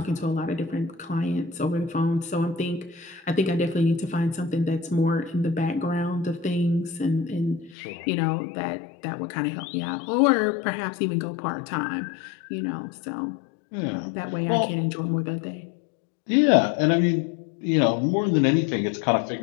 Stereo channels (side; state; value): right; drops out; at 7.8 s